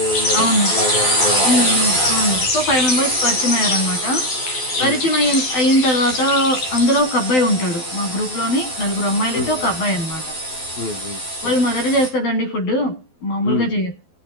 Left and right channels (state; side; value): late; right; 12 ms